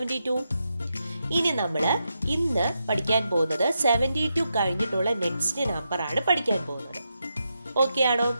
ഇനി നമ്മൾ ഇന്ന് പഠിക്കാൻ പോകുന്നത് 72 കഴിഞ്ഞിട്ടുള്ള നെക്സ്റ്റ് നമ്പർ ആണ് പഠിക്കാൻ പോകുന്നത്. ഓക്കെ ആണോ?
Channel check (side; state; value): both; inverted; correlation -0.85